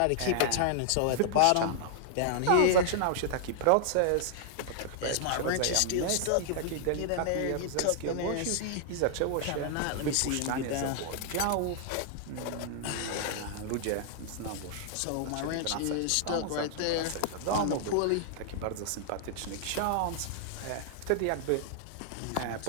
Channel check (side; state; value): both; different; correlation 0.00